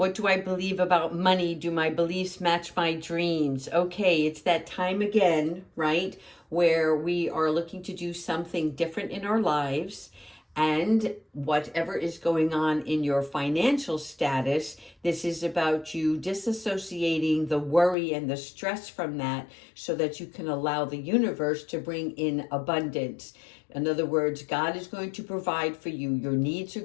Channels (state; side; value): drops out; right; at 17.9 s